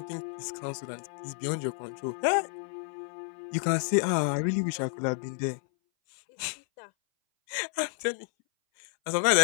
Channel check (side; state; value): right; silent; 57 dB below the other